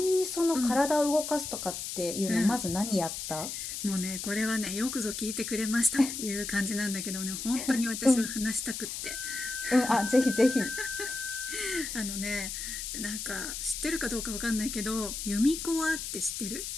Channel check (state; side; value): noise; left; hiss, 6 dB below the sound